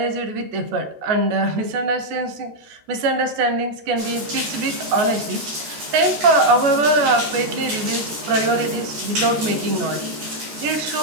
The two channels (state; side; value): late; left; 13 ms